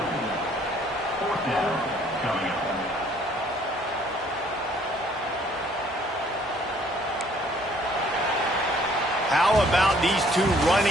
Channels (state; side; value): normal; both; correlation 0.60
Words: How about these two